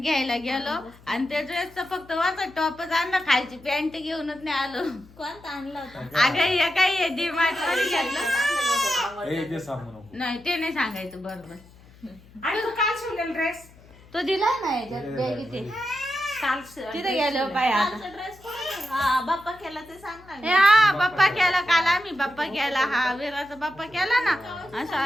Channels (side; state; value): left; noise; hum, 24 dB below the sound